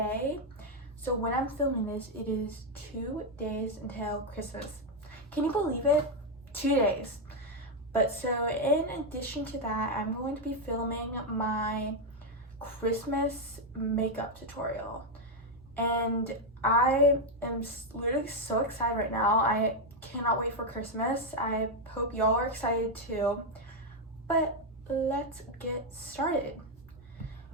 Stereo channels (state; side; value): normal; both; correlation 0.03